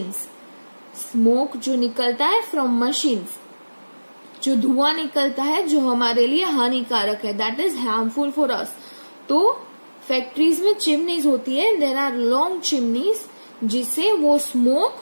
स्मोक जो निकलता है from machines, जो धुआं निकलता है जो हमारे लिए हानिकारक है, that is harmful for us. तो फैक्ट्रीज में चिमनीज होती है. देयर आर लॉन्ग चिमनीज जिससे वो स्मोक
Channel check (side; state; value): both; inverted; correlation -1.00